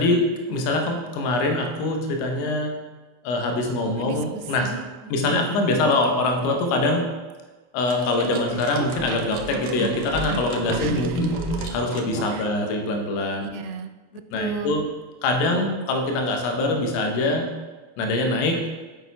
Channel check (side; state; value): right; late; 24 ms